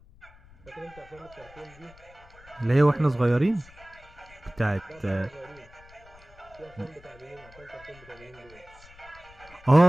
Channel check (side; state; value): left; noise; rumble, 23 dB below the sound